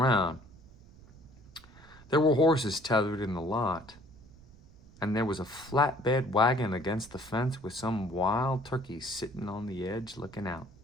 There were horses tethered in the lot, and there was a flatbed wagon against the fence with some wild turkeys sitting on the edge looking out.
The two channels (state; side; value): noise; right; rumble, 23 dB below the sound